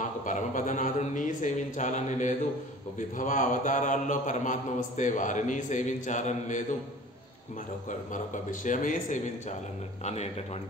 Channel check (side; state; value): both; normal; correlation 0.44